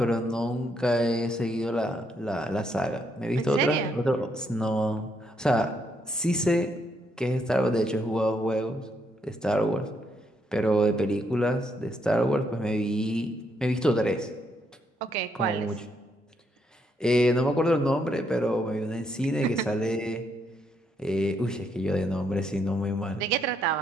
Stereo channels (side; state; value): both; normal; correlation 0.75